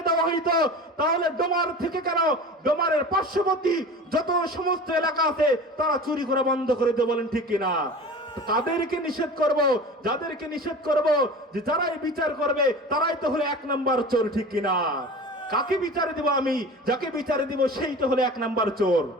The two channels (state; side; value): normal; both; correlation 0.36